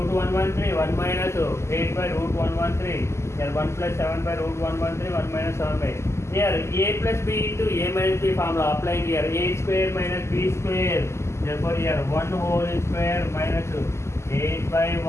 113, 1 minus 8 by root 113. Here 1 plus 7 by root 113, 1 minus 7 by. Here a plus b into a minus b formula applying here. A square minus b square. Therefore here 1 whole square minus 8 by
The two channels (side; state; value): right; late; 0.13 ms